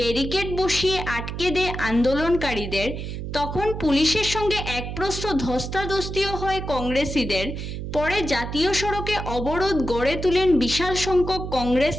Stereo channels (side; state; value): right; noise; hum, 6 dB below the sound